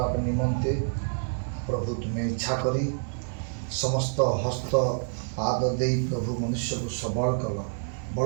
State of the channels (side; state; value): left; silent; 60 dB below the other